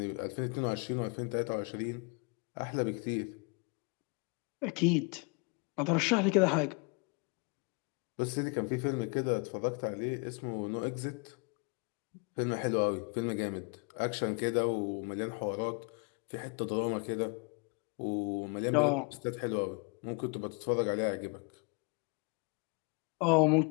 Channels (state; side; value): quieter; right; 33.8 dB